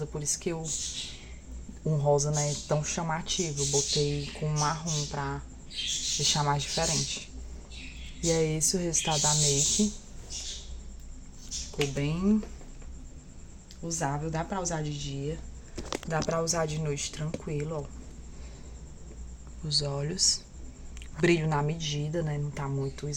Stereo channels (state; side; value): identical; both; correlation 1.00